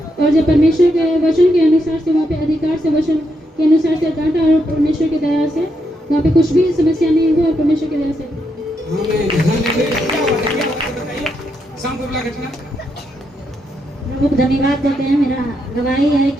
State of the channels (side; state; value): both; normal; correlation 0.80